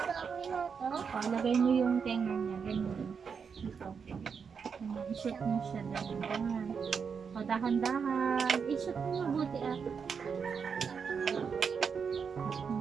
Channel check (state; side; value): quieter; left; 6.2 dB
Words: O, lagay mo yung tenga niya. Ganyan. Dito. I-shoot mo siya dahan-dahan. O, dahan-dahan. I-shoot mo mabuti ah.